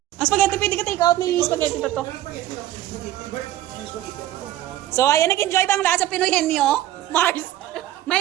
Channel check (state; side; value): quieter; left; 13.6 dB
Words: Ang spaghetti, pwede ka take out na yung spaghetti pa to. So, ayan, nag-enjoy ba ang lahat sa Pinoy Henyo? Mars.